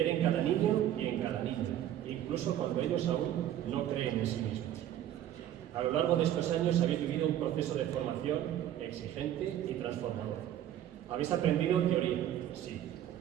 en cada niño y en cada niña, incluso cuando ellos aún no creen en sí mismos. A lo largo de estos años habéis vivido un proceso de formación exigente y transformador. Habéis aprendido teoría, sí,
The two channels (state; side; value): quieter; left; 11.6 dB